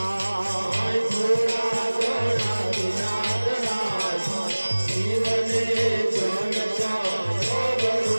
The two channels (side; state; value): both; inverted; correlation -1.00